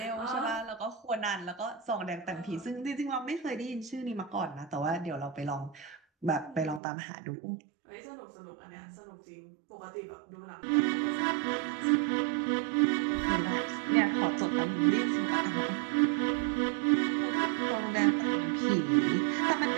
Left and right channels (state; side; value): drops out; left; at 6.8 s